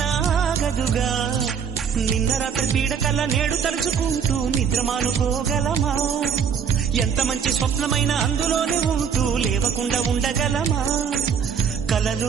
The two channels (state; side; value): quieter; left; 7.1 dB